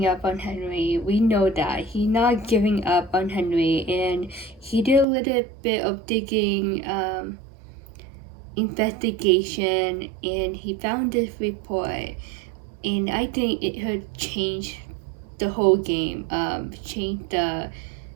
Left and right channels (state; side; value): drops out; left; at 5.1 s